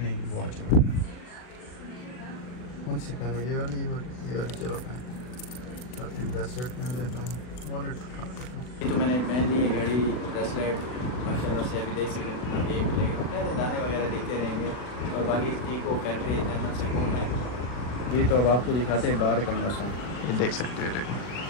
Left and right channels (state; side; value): late; right; 40 ms